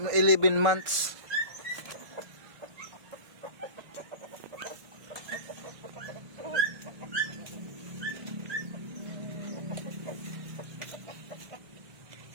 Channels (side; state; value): left; late; 1.5 ms